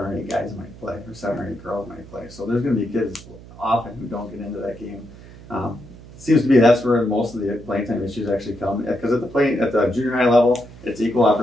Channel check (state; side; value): noise; right; hum, 18 dB below the sound